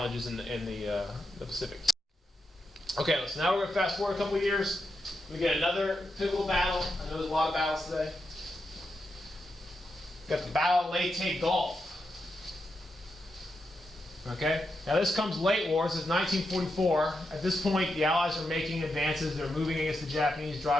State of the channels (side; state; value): both; normal; correlation 0.86